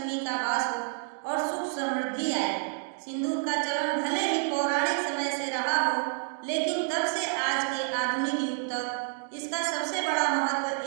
का वास हो और सुख समृद्धि आए। सिंदूर का चलन भले ही पौराणिक समय से रहा हो, लेकिन तब से आज के आधुनिक युग तक इसका सबसे बड़ा महत्व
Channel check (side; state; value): left; silent; 59 dB below the other